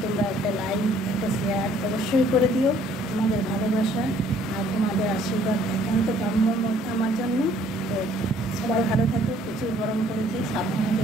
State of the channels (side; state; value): both; normal; correlation 0.60